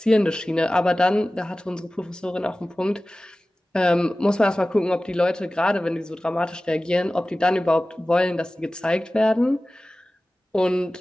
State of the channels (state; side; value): normal; both; correlation 0.97